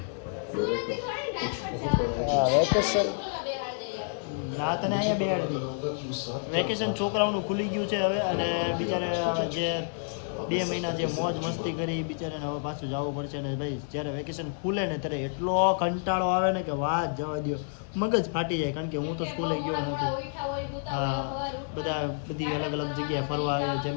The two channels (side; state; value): right; silent; 59 dB below the other